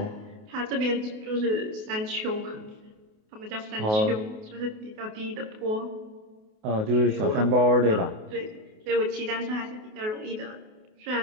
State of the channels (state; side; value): late; left; 28 ms